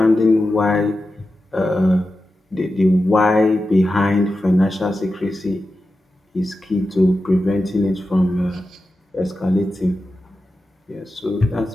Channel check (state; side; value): normal; both; correlation 0.92